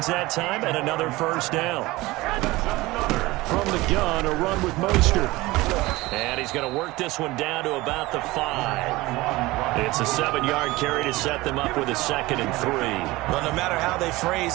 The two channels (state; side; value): quieter; left; 20.1 dB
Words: that time, and another first down. From the gun, a run with Mostert. And he's going to work this one down to about the 5. It's a 7-yard carry to set them up with a 2nd and 3. Well, no matter how they